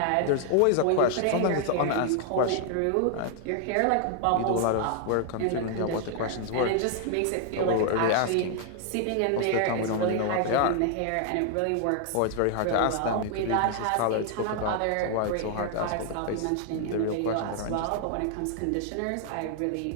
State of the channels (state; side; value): different; both; correlation 0.00